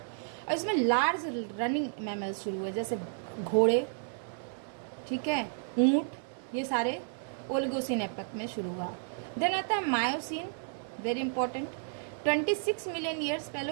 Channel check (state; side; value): silent; left; 56 dB below the other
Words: और इसमें लार्ज रनिंग मैमल्स शुरू हुए, जैसे घोड़े, ठीक है, ऊंट, ये सारे ओलिगोसीन एपक में शुरू हुआ। देन आता है Miocene, very important, 26 million years पहले,